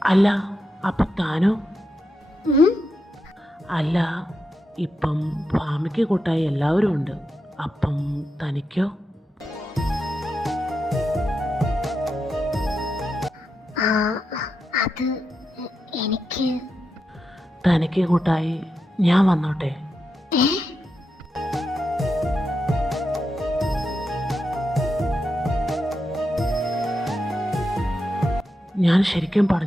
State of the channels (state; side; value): normal; both; correlation 0.86